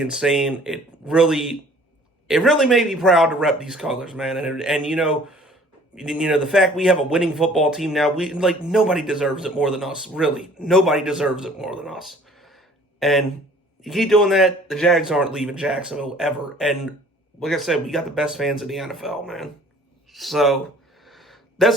It really made me proud to rep these colors, man. And the fact we have a winning football team now, we like nobody deserves it more than us. Really, nobody deserves it more than us. And you keep doing that, the Jags aren't leaving Jacksonville ever. And like I said, we got the best fans in the NFL, man. So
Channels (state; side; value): normal; both; correlation 0.53